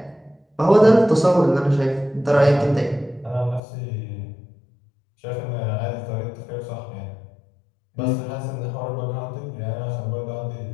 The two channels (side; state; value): right; drops out; at 3.6 s